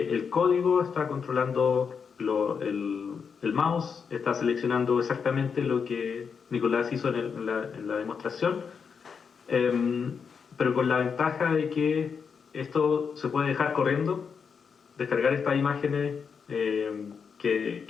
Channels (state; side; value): quieter; right; 6.2 dB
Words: código está controlando el mouse, está seleccionando exactamente lo que Nicolás hizo en la demostración, pero con la ventaja de que esto se puede dejar corriendo, descargar estas imágenes